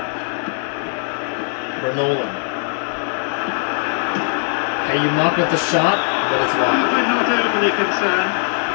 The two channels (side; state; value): right; silent; 61 dB below the other